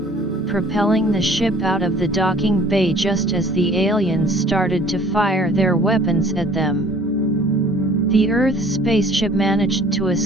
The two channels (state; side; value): normal; both; correlation 0.52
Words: propelling the ship out of the docking bay just as the aliens started to fire their weapons at them. The Earth spaceship managed to